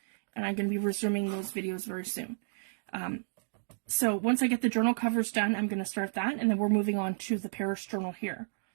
and I'm going to be resuming those videos very soon. So once I get the journal covers done, I'm going to start that, and then we're moving on to the Paris journal here.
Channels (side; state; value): left; silent; digital silence